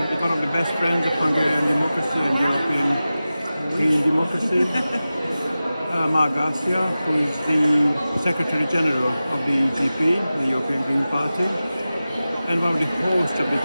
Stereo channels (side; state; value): both; inverted; correlation -0.95